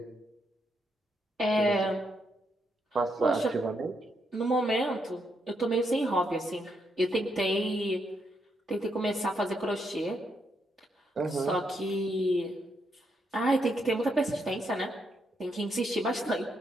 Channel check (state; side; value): normal; both; correlation 0.78